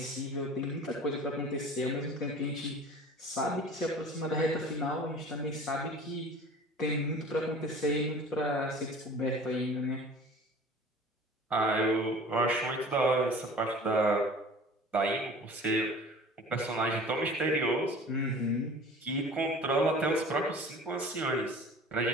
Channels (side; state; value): both; normal; correlation 0.43